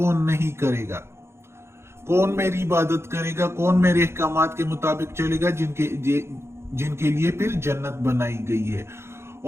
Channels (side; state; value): left; late; 0.12 ms